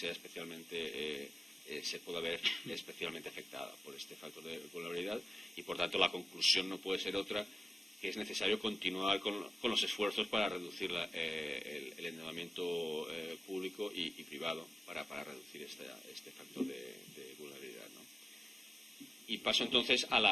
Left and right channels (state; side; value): normal; both; correlation 0.94